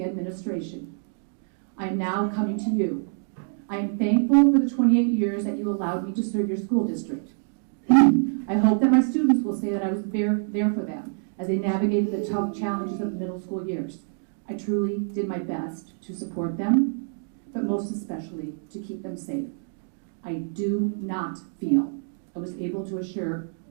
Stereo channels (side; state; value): left; silent; 61 dB below the other